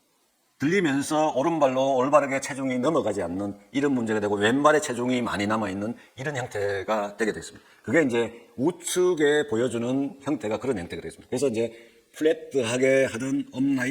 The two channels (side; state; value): both; identical; correlation 1.00